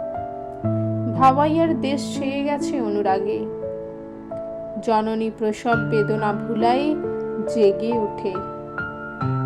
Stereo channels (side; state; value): both; identical; correlation 1.00